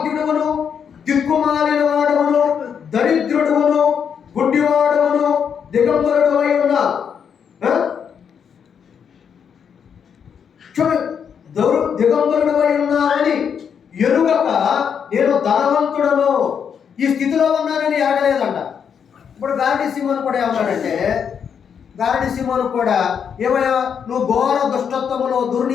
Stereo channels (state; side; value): quieter; right; 7.4 dB